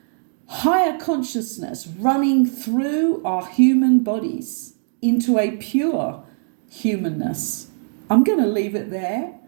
higher consciousness running through our human bodies into a pure humanness. I'm going to leave it there.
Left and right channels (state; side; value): silent; left; 65 dB below the other